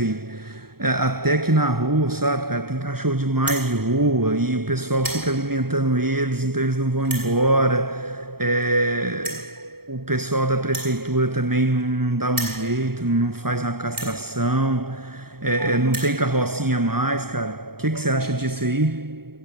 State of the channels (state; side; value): late; left; 0.95 ms